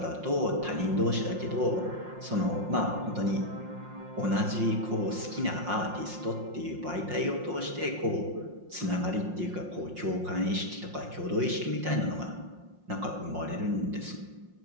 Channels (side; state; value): left; late; 5.6 ms